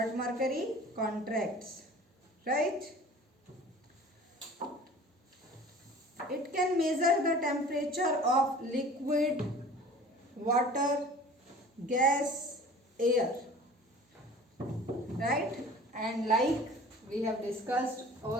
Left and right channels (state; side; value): normal; both; correlation 0.44